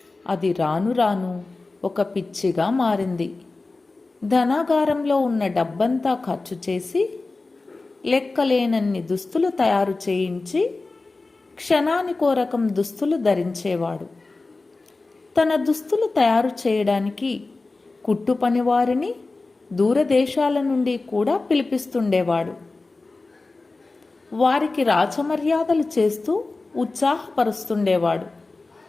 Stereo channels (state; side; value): quieter; right; 3.5 dB